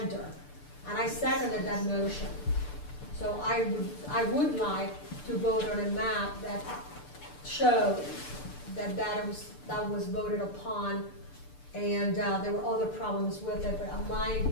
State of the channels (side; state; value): right; late; 6.8 ms